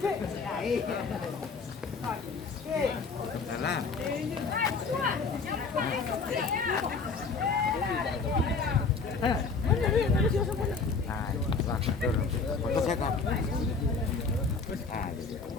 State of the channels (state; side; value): quieter; right; 4.6 dB